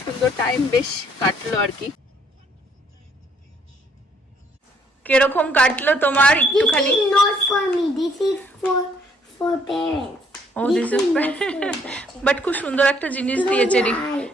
সুন্দর টাইম বেশ কাটলো আর কি। কিরকম কাটলো তোমার একটুখানি? This is not for me. This is for parents. ও দিস ইজ বাট খুব সুন্দর একটা জিনিস দিয়েছে,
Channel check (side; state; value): both; normal; correlation 0.66